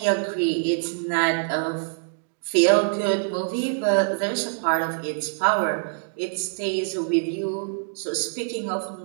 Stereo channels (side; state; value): left; silent; digital silence